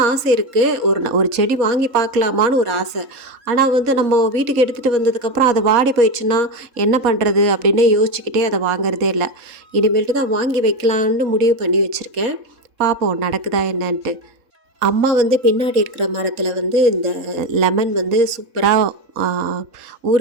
ஆசை இருக்குது. ஒரு செடி வாங்கி பார்க்கலாமான்னு ஒரு ஆசை. ஆனால் வந்து நம்ம வீட்டுக்கு எடுத்துகிட்டு வந்ததுக்கப்புறம் அது வாடி போயிடுச்சுன்னா என்ன பண்ணுறது அப்படின்னு யோசிச்சுக்கிட்டே அதை வாங்குறதே இல்லை. இனிமேல்ட்டு தான் வாங்கி வைக்கலான்னு முடிவு பண்ணி வச்சுருக்கேன். பார்ப்போம் நடக்குதா என்னன்ட்டு. அம்மா வந்து பின்னாடி இருக்கிற மரத்தில் வந்து இந்த லெமன் வந்து சூப்பராக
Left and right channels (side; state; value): left; late; 4.2 ms